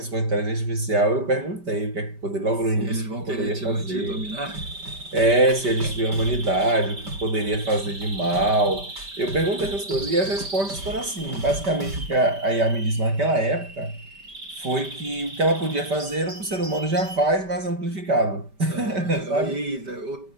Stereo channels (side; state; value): left; late; 5.1 ms